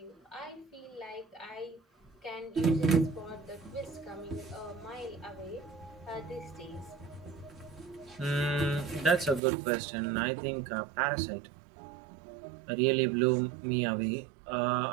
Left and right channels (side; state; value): left; drops out; at 9.4 s